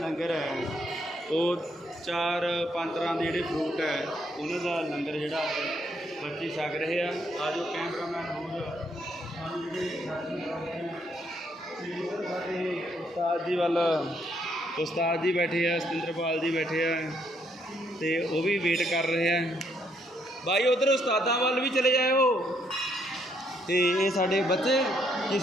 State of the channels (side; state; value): both; normal; correlation 0.72